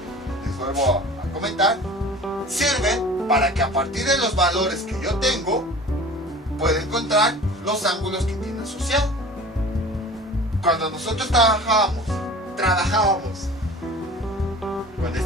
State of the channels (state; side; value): normal; both; correlation 0.41